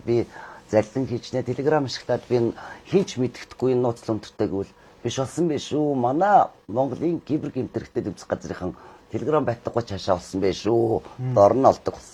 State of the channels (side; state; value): both; identical; correlation 1.00